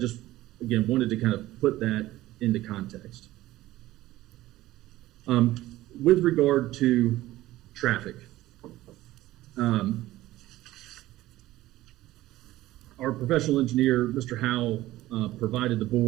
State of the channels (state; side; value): quieter; left; 16.3 dB